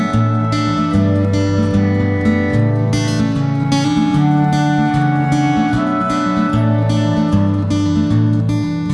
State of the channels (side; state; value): both; identical; correlation 1.00